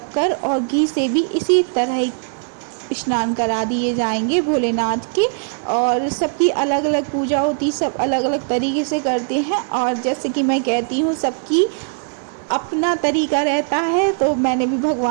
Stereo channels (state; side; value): silent; left; 66 dB below the other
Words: और घी से भी इसी तरह स्नान करा दिए जाएंगे भोलेनाथ के। और सबकी अलग अलग पूजा होती, सब अलग अलग तरीके से करते हैं। और जैसे कि मैं कहती हूँ सबकी अपना तरीका रहता है, तो मैंने भी